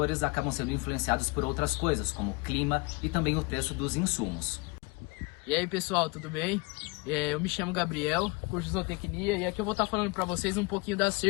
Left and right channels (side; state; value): right; quieter; 27.5 dB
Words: acabam sendo influenciados por outras coisas, como o clima e também o preço dos insumos. E aí pessoal, tudo bem? Eu me chamo Gabriel, curso de zootecnia, e aqui eu vou estar falando para vocês um pouquinho da